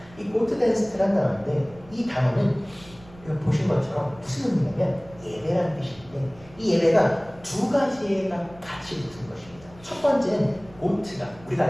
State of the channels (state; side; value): noise; right; rumble, 22 dB below the sound